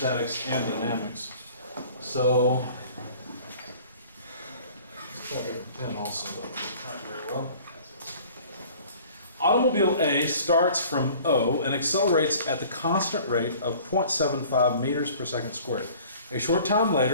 and dynamics. So, let's try a different pen also, though. Not very well. Automobile A starts from O and accelerates at the constant rate of 0.75 meters per second squared. A short time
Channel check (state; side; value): inverted; both; correlation -0.49